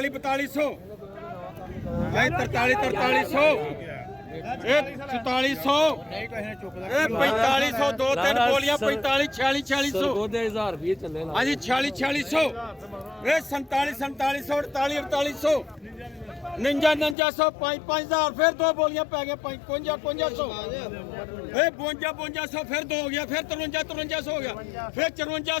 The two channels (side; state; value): right; drops out; at 17.2 s